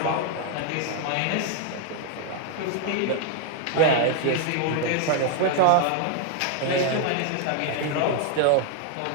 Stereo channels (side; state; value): both; different; correlation 0.01